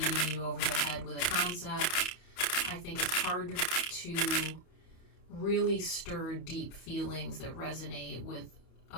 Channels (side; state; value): right; late; 31 ms